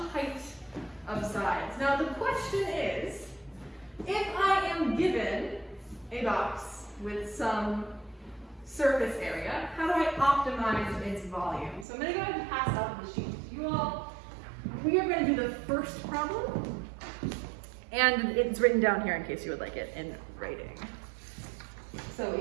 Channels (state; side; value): drops out; left; at 11.9 s